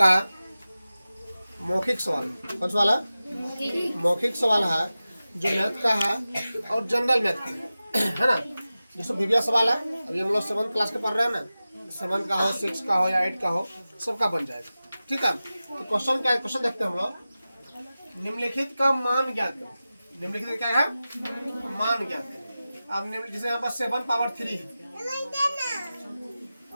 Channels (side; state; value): both; inverted; correlation -0.95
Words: मौखिक सवाल कौन सा वाला मौखिक सवाल है जो मैथ का है और जनरल मैथ का है ना। जैसे विज्ञान सवाल है, अभी हम लोग 7th क्लास के पढ़ रहे हैं ना, 7th का हो 6 का हो या 8 का हो सबका बन जाएगा। ठीक है, तो क्वेश्चन क्या है, क्वेश्चन देखते हैं हम लोग। निम्नलिखित का मान ज्ञात करें। निम्नलिखित क्या है, मान ज्ञात करें। अब जैसे यहाँ पर 7 पावर 3 है,